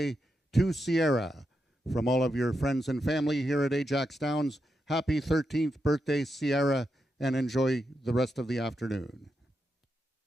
to Sierra. From all of your friends and family here at Ajax Downs, happy 13th birthday, Sierra, and enjoy the rest of the afternoon.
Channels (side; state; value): both; normal; correlation 0.85